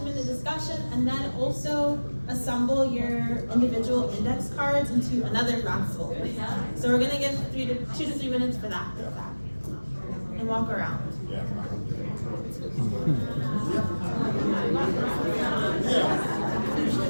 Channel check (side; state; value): both; inverted; correlation -1.00